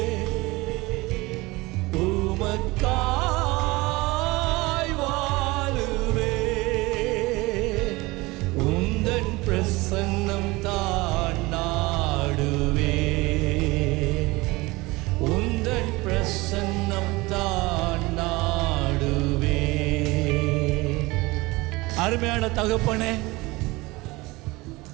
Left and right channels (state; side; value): quieter; left; 22.2 dB